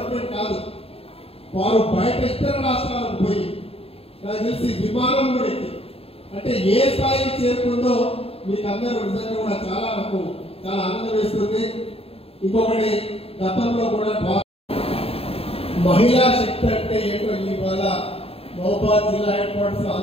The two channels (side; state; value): right; late; 0.28 ms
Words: కాదు, వారు బయట ఇతర రాష్ట్రాలకు పోయి నాకు తెలిసి విమానం కూడా ఎక్కి అంటే ఏ స్థాయికి చేరుకుందో మీకు అందరూ నిజంగా కూడా నాకు చాలా ఆనందం వేస్తుంది. ఇంకొకటి, గతంలో కూడా మహిళా శక్తి అంటే ఏంటో ఇవాళ మహబూబాబాద్ జిల్లా హెడ్ క్వార్టర్స్